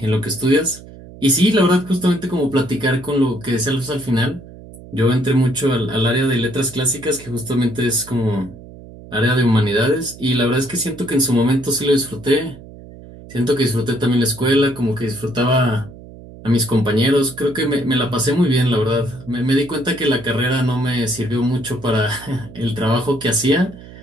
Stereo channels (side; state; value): right; noise; hum, 18 dB below the sound